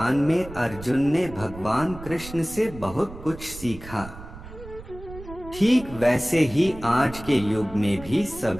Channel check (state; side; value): noise; right; rumble, 15 dB below the sound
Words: में अर्जुन ने भगवान कृष्ण से बहुत कुछ सीखा। ठीक वैसे ही आज के युग में भी